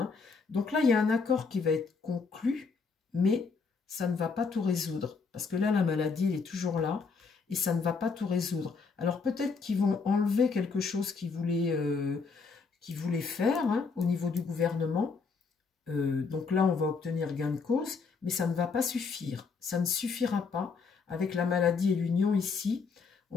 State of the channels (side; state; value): right; quieter; 4.9 dB